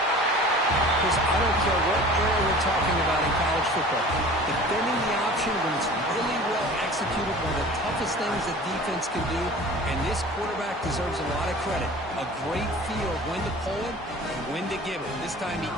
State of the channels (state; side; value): normal; both; correlation 0.42